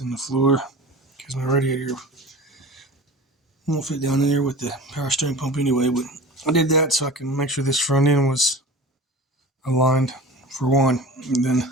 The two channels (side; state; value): both; normal; correlation 0.36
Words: the floor because my radiator won't fit down in there with the power steering pump anyway, but I did that so I can make sure this front end was aligned for one. And then